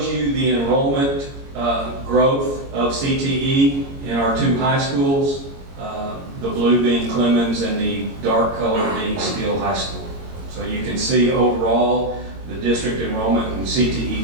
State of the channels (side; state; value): left; late; 22 ms